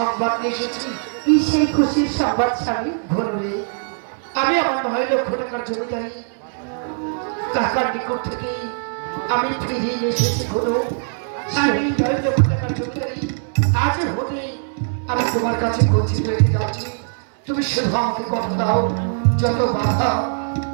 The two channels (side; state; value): left; silent; 65 dB below the other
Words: নিয়ে এসেছি। কি সেই খুশির সংবাদ স্বামী? ঘরে আমি আমার 9 লক্ষ টাকার জমিদারি কাকার নিকট থেকে আমি ফিরিয়ে এসেছি। ঘরে আমি 9 লক্ষ টাকার জমিদারি আজ হতে আমি তোমার কাছে গচ্ছিত রেখে যাচ্ছি। তুমি শুধু আমাকে কথা দাও, যত বাধা